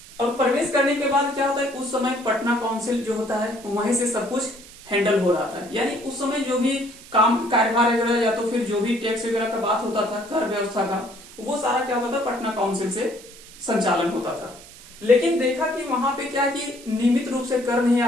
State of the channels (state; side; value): noise; right; hiss, 19 dB below the sound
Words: और प्रवेश करने के बाद क्या होता है, उस समय पटना काउंसिल जो होता है वहीं से सब कुछ हैंडल हो रहा था। यानी उस समय जो भी काम कार्यभार वगैरह या तो फिर जो भी टैक्स वगैरह का बात होता था, कर व्यवस्था का, वो सारा क्या होता था पटना काउंसिल से संचालन होता था। लेकिन देखा कि वहां पे क्या कि नियमित रूप से कर नहीं